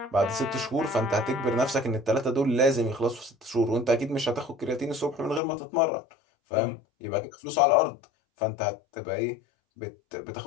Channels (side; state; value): right; drops out; at 5.4 s